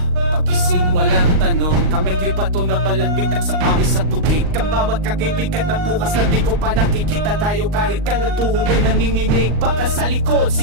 pagising walang tanong. Kami bato na balagbitak sa pawis at tubig. Kang bawat kakibigat na bukas na di ko pa nakikita tayo. Kahit kalatuhog ay nanginginig. Baka sa likod,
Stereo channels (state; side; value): late; left; 39 ms